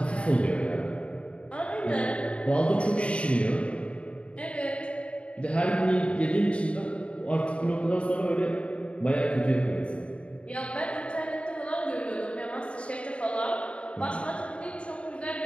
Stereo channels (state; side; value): late; right; 0.060 ms